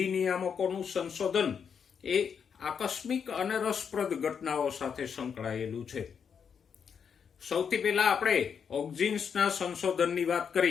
નિયામકોનું સંશોધન એ આકસ્મિક અને રસપ્રદ ઘટનાઓ સાથે સંકળાયેલું છે. સૌથી પહેલા આપણે ઓક્ઝિન્સના સંશોધનની વાત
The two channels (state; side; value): quieter; right; 7.0 dB